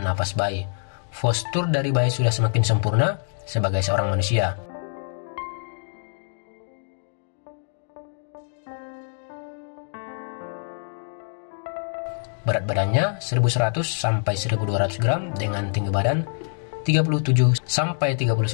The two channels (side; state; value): right; silent; digital silence